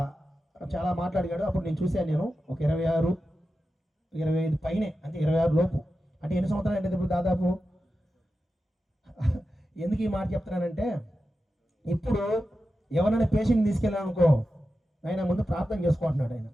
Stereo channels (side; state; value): both; normal; correlation 0.91